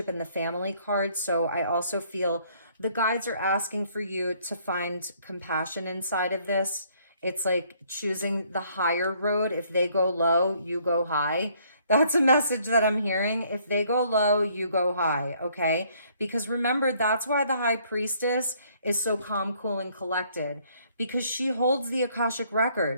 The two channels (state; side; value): inverted; both; correlation -0.64